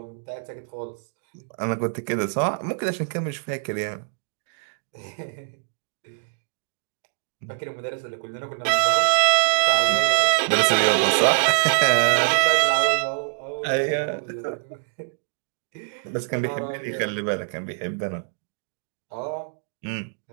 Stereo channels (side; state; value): left; silent; digital silence